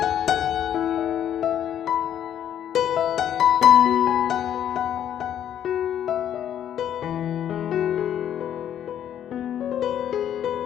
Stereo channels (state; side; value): quieter; right; 10.1 dB